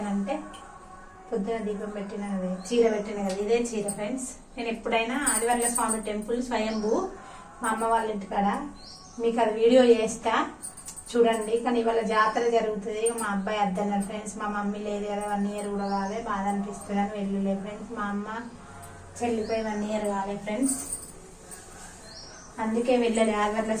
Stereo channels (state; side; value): identical; both; correlation 1.00